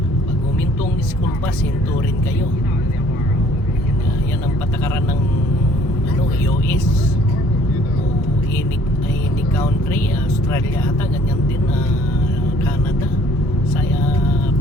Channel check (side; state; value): both; normal; correlation 0.57